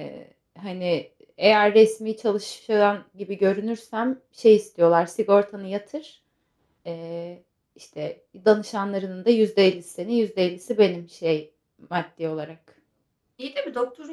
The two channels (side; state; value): both; identical; correlation 1.00